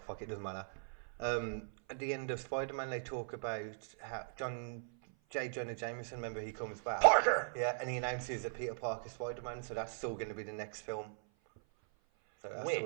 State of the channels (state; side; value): silent; left; 52 dB below the other